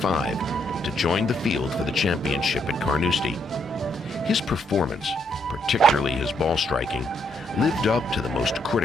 to join the field for the championship at Carnoustie. His performance, particularly his ball striking, lived up to the most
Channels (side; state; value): both; normal; correlation 0.74